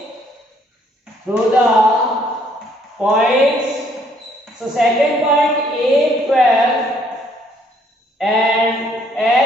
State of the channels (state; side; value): normal; both; correlation 0.66